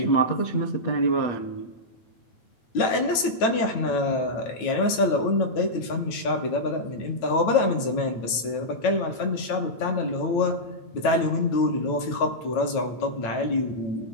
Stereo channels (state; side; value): late; right; 9.0 ms